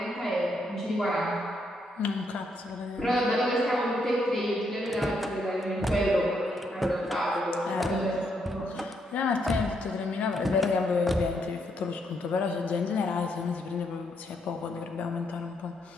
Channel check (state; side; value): normal; both; correlation 0.76